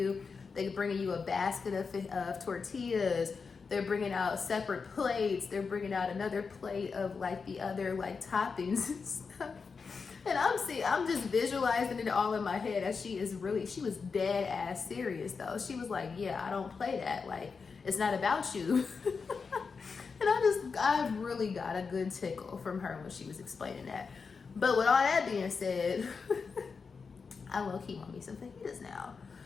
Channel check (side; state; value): right; quieter; 5.1 dB